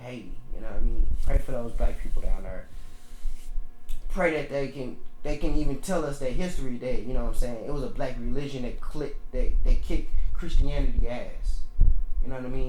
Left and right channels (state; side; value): identical; both; correlation 1.00